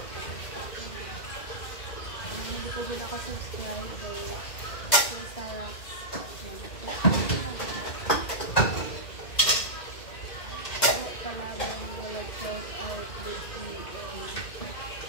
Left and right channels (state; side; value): late; right; 2.0 ms